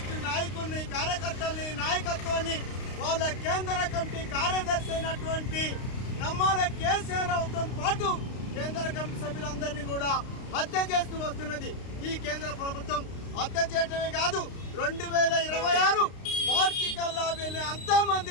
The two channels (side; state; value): right; late; 32 ms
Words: నాయకుల్ని, కార్యకర్తల్ని, నాయకత్వాన్ని, వాళ్ళ కేంద్ర కమిటీ కార్యదర్శి అయినటువంటి నమ్మాల కేసీఆర్తో పాటు కేంద్ర కమిటీ సభ్యులందరినీ కూడా హత్య చేస్తూ వస్తున్నది. ఈ కేంద్ర ప్రభుత్వం హత్య చేయటమే కాదు, 2026 మార్చి కల్లా వీళ్ళని